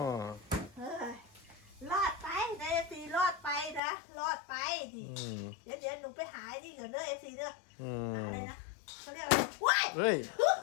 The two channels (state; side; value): drops out; right; at 3.8 s